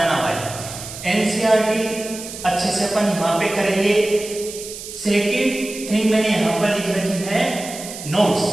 भाई, एनसीईआरटी अच्छे से अपन यहाँ पे करेंगे। सेकंड थिंग मैंने यहाँ पर लिख रखी है नोट्स।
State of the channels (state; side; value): noise; right; hiss, 11 dB below the sound